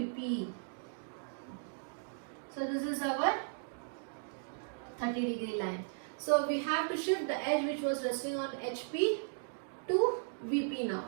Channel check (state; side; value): silent; left; digital silence